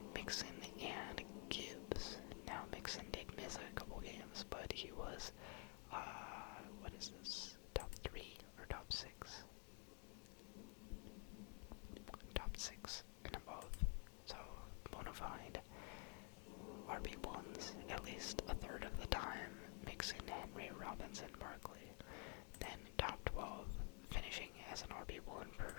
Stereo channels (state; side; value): quieter; right; 38.2 dB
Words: Mixon, and Gibbs. Now, Mixon did miss a couple games, but he was, what is this? Top 3 or top 6? Top 6 and above. So, bona fide RB1s, at least a third of the time. Mixon, Henry, Robinson, Barkley. Then top 12, finishing as an RB1 for